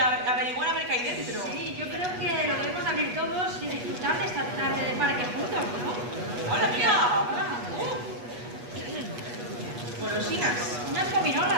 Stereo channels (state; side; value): late; left; 8.3 ms